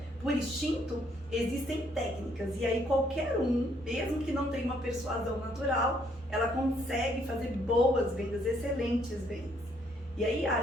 por instinto, existem técnicas. E aí qualquer um, mesmo que não tenha uma persuasão natural, ela consegue fazer boas vendas, excelentes vendas. E aí,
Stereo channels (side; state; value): both; normal; correlation 0.68